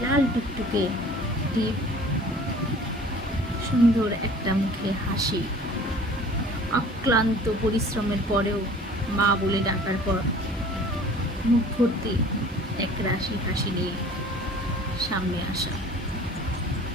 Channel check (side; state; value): both; normal; correlation 0.48